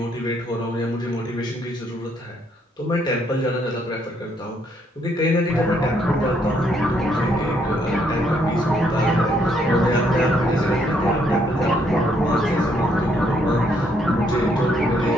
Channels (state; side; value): normal; both; correlation 0.71